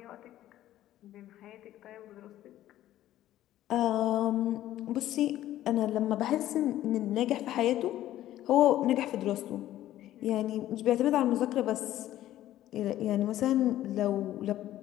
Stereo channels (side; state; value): right; quieter; 13.5 dB